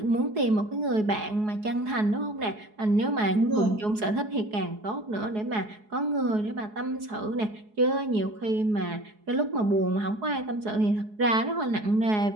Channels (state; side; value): late; left; 4.7 ms